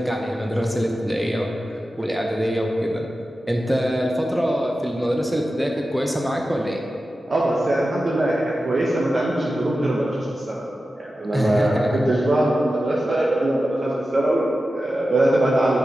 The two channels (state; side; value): normal; both; correlation 0.93